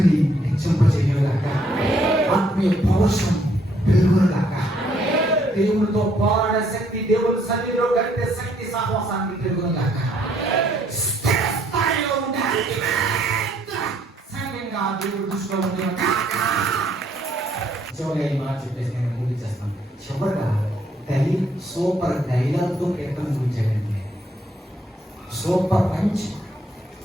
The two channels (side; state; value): both; normal; correlation 0.68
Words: హెచ్చింపజేయగాక, ఆత్మీయ పౌరుషం పెరుగుగాక, దేవునితో పోరాడే శక్తి, దేవుని సన్నిధిలో గడిపే శక్తి సహవాసానికి పెరుగుగాక. స్థిరస్థాయిలో ఉండే సంఘంగా దేవుడు దృష్టిలో ఉండే చివరిగా ఈ మాట చెప్పేసి నేను ముగించేస్తాను. చివరిగా సూపర్ డైలాగ్తో కీర్తన ముగించాడండి. సూపర్ పంచ్